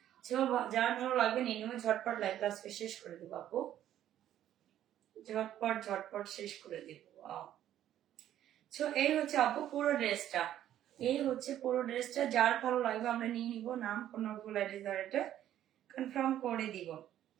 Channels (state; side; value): quieter; left; 11.7 dB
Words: যার ভালো লাগবে নিয়ে নেবে। ঝটপট লাইভটা আজকে শেষ করে দিব আপু, ঝটপট ঝটপট শেষ করে দিব। এই হচ্ছে আপু পুরো ড্রেসটা, এই হচ্ছে পুরো ড্রেসটা। যার ভালো লাগবে আমরা নিয়ে নিব। নাম ফোন নাম্বার এটা কনফার্ম করে দিব।